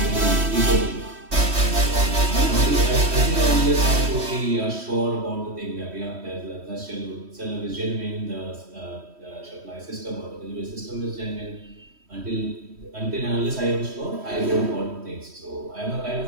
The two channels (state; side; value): late; left; 3.1 ms